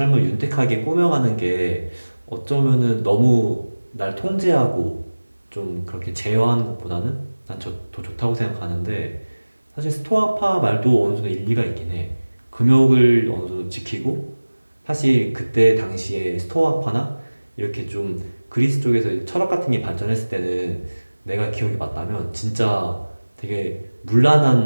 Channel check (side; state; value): both; inverted; correlation -1.00